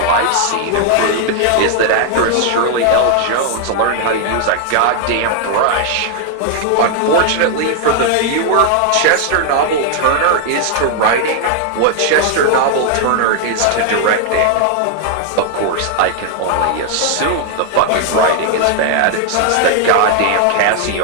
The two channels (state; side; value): different; both; correlation 0.00